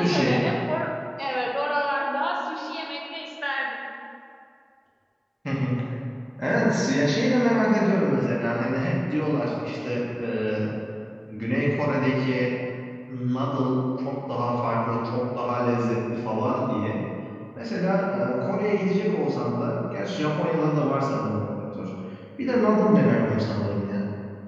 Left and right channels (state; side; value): identical; both; correlation 1.00